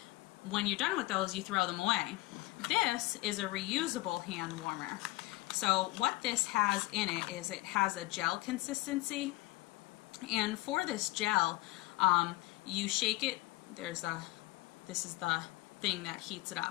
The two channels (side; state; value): right; quieter; 20.6 dB